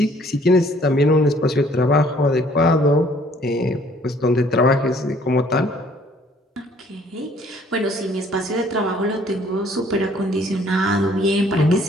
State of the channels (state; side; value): normal; both; correlation 0.59